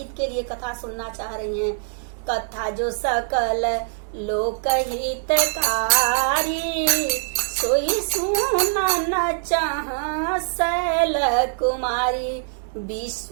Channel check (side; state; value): left; silent; 63 dB below the other